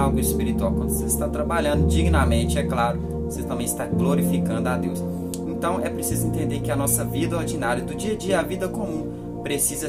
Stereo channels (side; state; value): both; identical; correlation 1.00